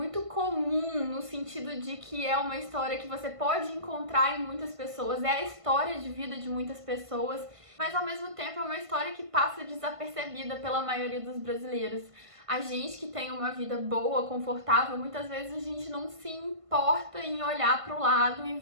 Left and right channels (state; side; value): late; left; 1.5 ms